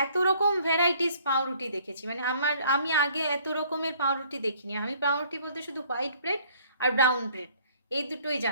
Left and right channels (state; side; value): inverted; both; correlation -0.60